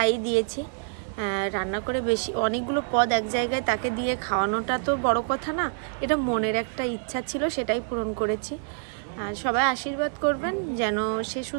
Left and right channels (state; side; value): silent; left; digital silence